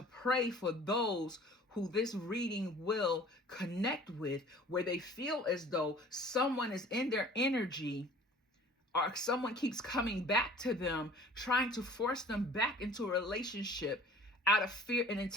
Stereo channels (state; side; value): normal; both; correlation 0.48